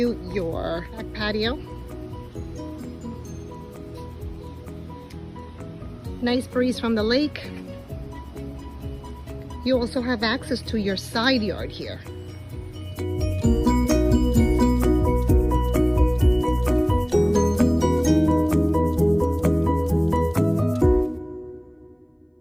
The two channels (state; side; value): identical; both; correlation 1.00